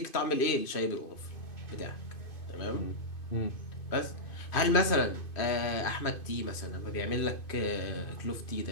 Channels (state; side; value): late; right; 2.5 ms